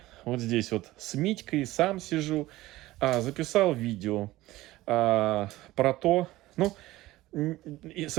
Вот здесь вот с Митькой сам сижу. Записал видео про то... Ну, и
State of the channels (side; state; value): left; quieter; 17.5 dB